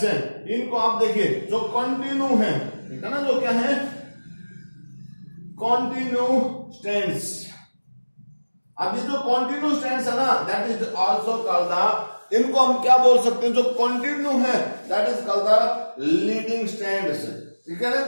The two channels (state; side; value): inverted; both; correlation -1.00